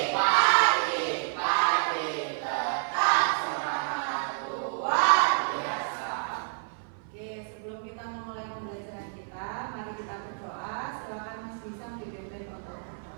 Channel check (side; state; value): left; silent; 57 dB below the other